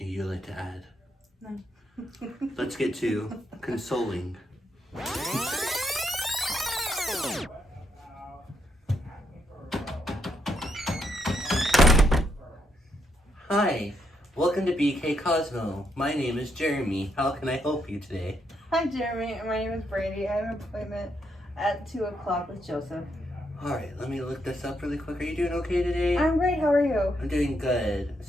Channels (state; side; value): normal; both; correlation 0.78